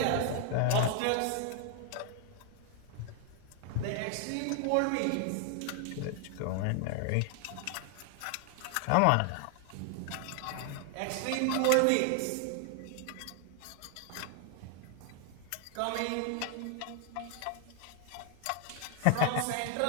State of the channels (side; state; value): both; different; correlation 0.00